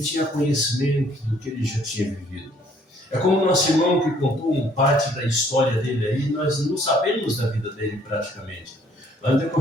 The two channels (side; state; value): both; normal; correlation 0.62